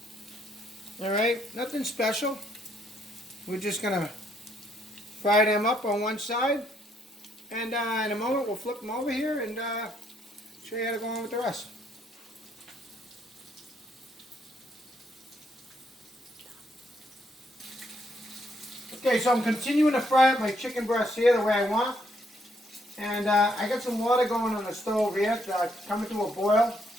Alright, nothing special. We're just going to fry them up on one side. And in a moment we'll flip them over here and show you how to go on with the rest. Okay, so I'm continuing to fry up my chicken breasts here the way I want. And I got some water going on the stove here, coming to a boil.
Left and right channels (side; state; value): both; normal; correlation 0.72